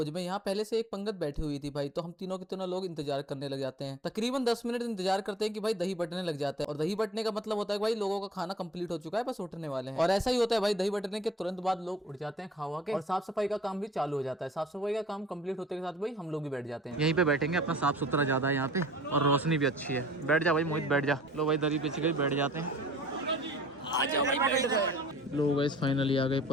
में। यहाँ पहले से एक पंगत बैठी हुई थी भाई, तो हम तीनों के तीनों लोग इंतजार करने लग जाते हैं। तकरीबन 10 मिनट इंतजार करते हैं कि भाई दही बटने लग जाते हैं। और दही बटने का मतलब होता है भाई लोगों का खाना कंप्लीट हो चुका है, बस उठने वाले हैं। और ऐसा ही होता है भाई, दही बटने के तुरंत बाद लोग उठ जाते हैं खावा के, और साफ सफाई का काम भी चालू हो जाता है। साफ सफाई का काम कंप्लीट होते के साथ भाई हम लोग भी बैठ जाते हैं। यहीं पे बैठेंगे, अपना साफ सुथरा ज्यादा है यहाँ पे और रोशनी भी अच्छी है। बैठ जा भाई मोहित, बैठ जा। लो भाई दरी पिछ गई, बैठ जाते हैं। आ जाओ भाई, बैठ गए। लोग गाइस फाइनली आ गए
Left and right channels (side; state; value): both; normal; correlation 0.52